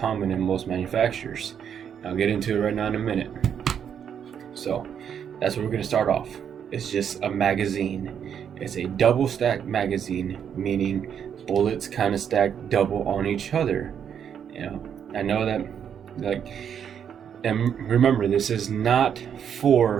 in most manufacturers. I'll get into it right now in a minute. So that's what we're gonna start off. It's just a magazine. It's a double stack magazine, meaning bullets kind of stack double on each other. I know that, and remember, this is not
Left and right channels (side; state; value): left; quieter; 8.2 dB